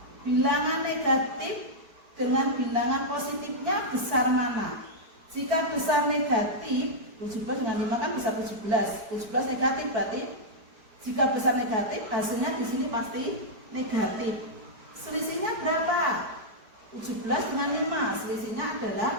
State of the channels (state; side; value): late; left; 4.6 ms